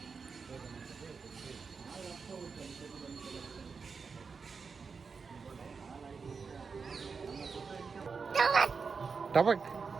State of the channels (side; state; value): left; quieter; 5.2 dB